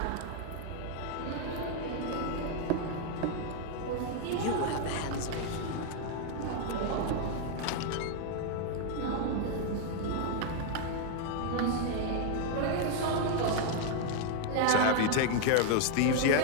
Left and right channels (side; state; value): both; different; correlation 0.00